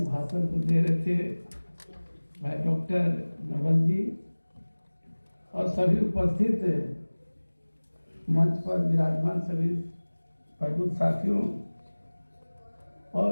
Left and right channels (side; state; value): both; inverted; correlation -1.00